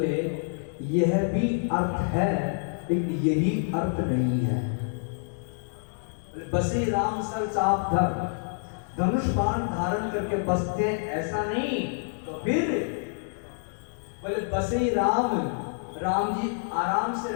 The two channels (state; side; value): silent; right; digital silence